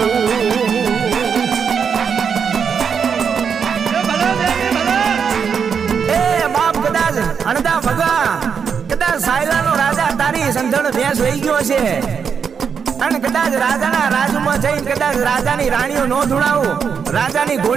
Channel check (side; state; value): left; quieter; 6.7 dB